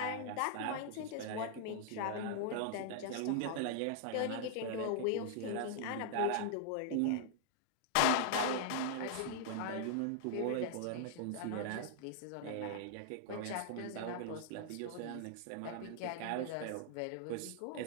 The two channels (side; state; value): both; different; correlation -0.01